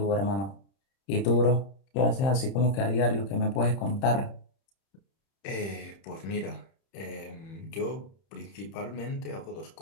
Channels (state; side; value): late; right; 31 ms